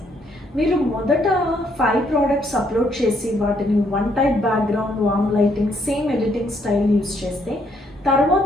మీరు మొదట 5 ప్రోడక్ట్స్ అప్లోడ్ చేసి వాటిని one type background, warm lighting, same editing style use చేస్తే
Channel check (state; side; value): normal; both; correlation 0.70